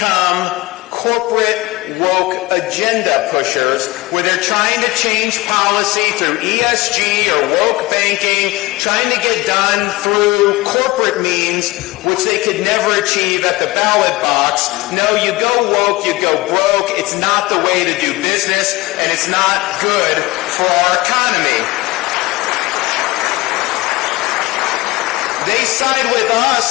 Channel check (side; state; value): right; quieter; 20.5 dB